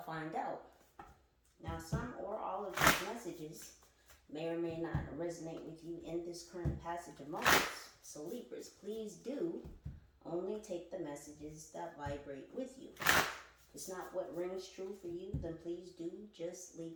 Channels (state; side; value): identical; both; correlation 1.00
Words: find out. Now, some or all of these messages may or may not resonate with you in this current passage of moments. So Libras, please do only take the messages that vibrate with you. If it's not what rings true for you, then please do just